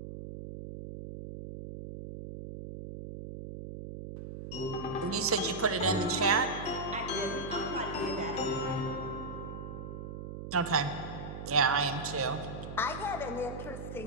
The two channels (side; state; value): right; noise; hum, 9 dB below the sound